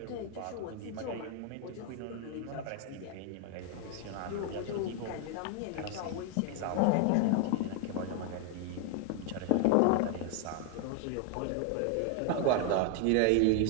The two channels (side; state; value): both; different; correlation 0.00